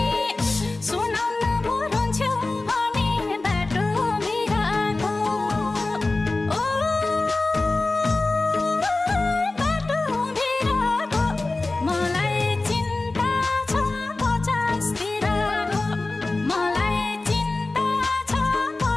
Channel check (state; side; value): quieter; right; 3.2 dB